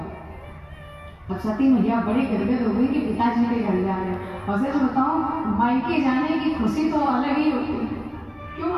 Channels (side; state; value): both; identical; correlation 1.00